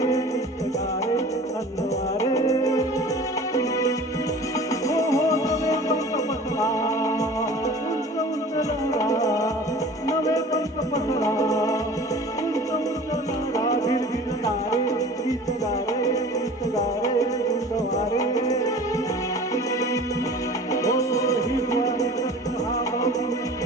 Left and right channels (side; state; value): both; normal; correlation 0.43